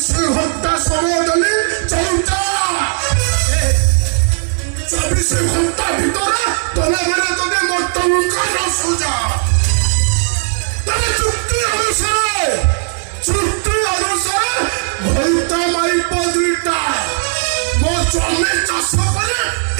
ଘଣ୍ଟା ସମୟ ଦେଲି ଚଉଟା 24 ଘଣ୍ଟା ଭିତରେ ତମେ ମାନେ ଯଦି ମୋ ଟଙ୍କା ନ ସୁଝା তবে চুক্তি অনুসারে ঘন্টা মাইপ দুইটা মো জমি চাষ করে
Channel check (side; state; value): left; silent; digital silence